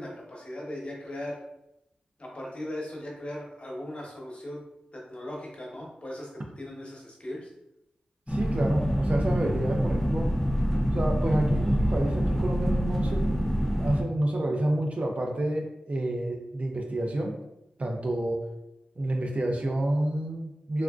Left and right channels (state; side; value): normal; both; correlation 0.96